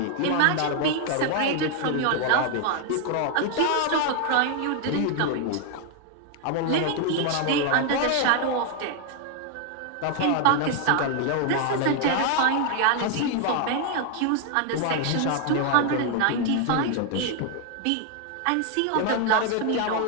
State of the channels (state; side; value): different; both; correlation 0.00